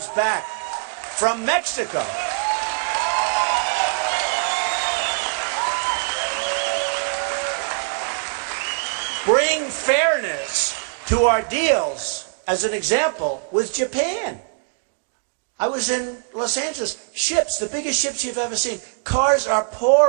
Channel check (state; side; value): silent; left; digital silence